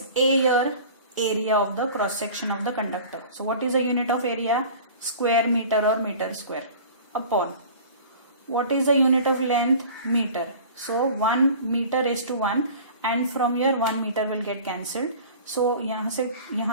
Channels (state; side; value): inverted; both; correlation -0.42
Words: A here? Area of the cross section of the conductor. So what is the unit of area? Square meter or meter square upon. What is the unit of length? Meter. So 1 meter is to 1 and from here 1 meter will get cancelled. So